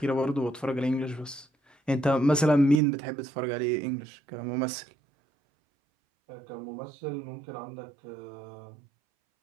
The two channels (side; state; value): left; drops out; at 2.8 s